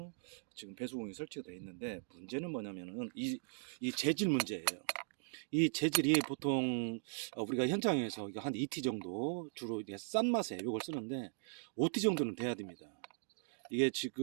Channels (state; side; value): silent; left; digital silence